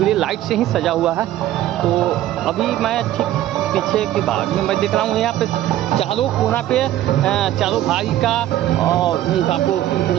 लाइट से ही सजा हुआ है। तो अभी मैं ठीक पीछे के भाग में मैं देख रहा हूँ, यहाँ पे चारों कोना पे चारों भाई का और उनका आपको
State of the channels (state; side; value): quieter; left; 13.6 dB